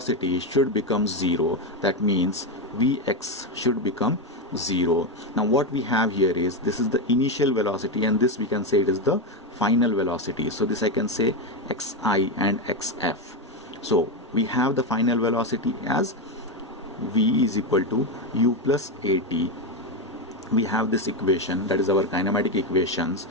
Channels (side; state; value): both; normal; correlation 0.10